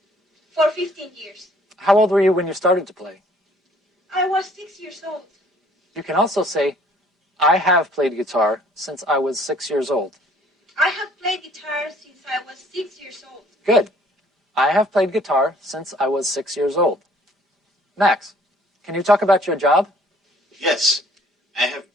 for 15 years. How old were you when you started to play? I was 6 years old. You can also say, I have played guitar since I was 6 years old. I have played guitar since I was 6 years old. Good. I have played guitar since I was 6 years old. Max, can you talk about your job? Yes, I have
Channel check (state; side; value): normal; both; correlation 0.59